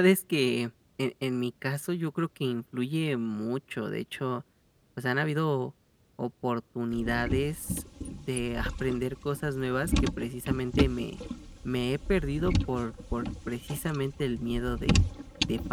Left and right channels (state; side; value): identical; both; correlation 1.00